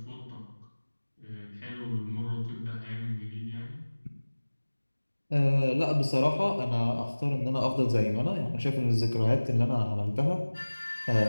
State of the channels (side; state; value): both; inverted; correlation -1.00